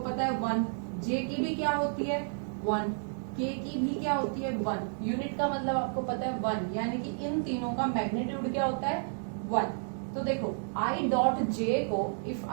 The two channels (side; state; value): left; silent; digital silence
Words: पता है 1, जे की भी क्या होती है 1, के की भी क्या होती है 1, यूनिट का मतलब आपको पता है 1, यानी कि इन तीनों का मैग्नीट्यूड क्या होता है 1। तो देखो आई डॉट जे को if